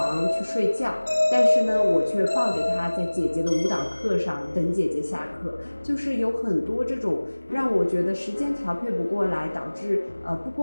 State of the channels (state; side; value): inverted; both; correlation -1.00